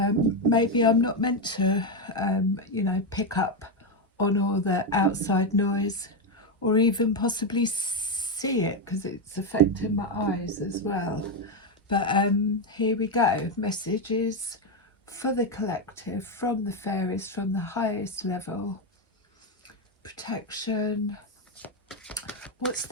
maybe I'm not meant to, pick up on all the outside noise or even possibly see it because it's affecting my eyes as well. But here we go. Messages for the collective from the fairies from the highest level. Protection. What's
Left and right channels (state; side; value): normal; both; correlation 0.07